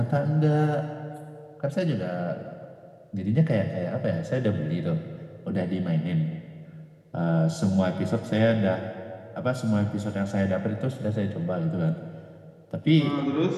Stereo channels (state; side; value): identical; both; correlation 1.00